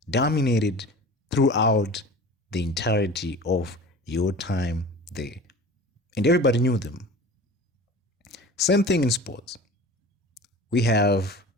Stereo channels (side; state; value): both; normal; correlation 0.38